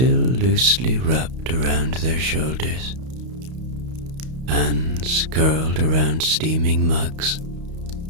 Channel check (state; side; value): late; left; 32 ms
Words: loosely wrapped around their shoulders, hands curled around steaming mugs.